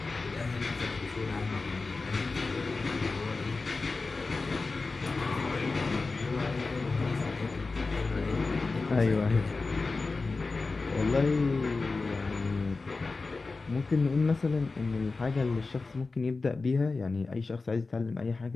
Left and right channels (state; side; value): quieter; right; 3.8 dB